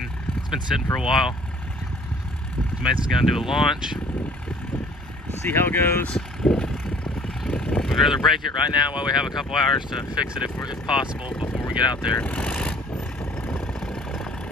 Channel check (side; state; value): both; normal; correlation 0.54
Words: It's been sitting for a while. Mason's gonna do a launch, see how it goes. We'd rather break it right now while we have a couple hours to fix it if possible before we get out there.